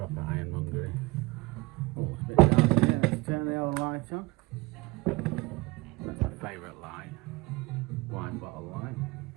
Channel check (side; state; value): left; quieter; 23.0 dB